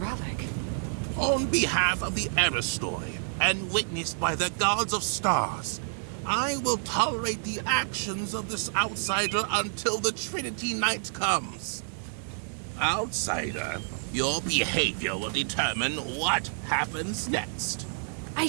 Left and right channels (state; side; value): silent; left; digital silence